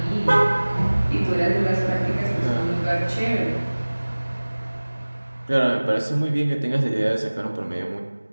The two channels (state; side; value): inverted; both; correlation -1.00